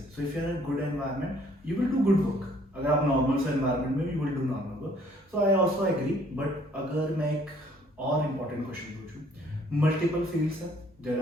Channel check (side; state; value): both; normal; correlation 0.61